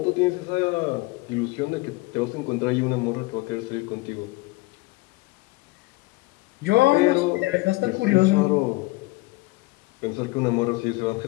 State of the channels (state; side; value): quieter; right; 22.5 dB